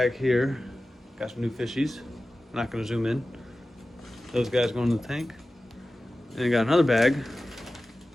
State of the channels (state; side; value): normal; both; correlation 0.95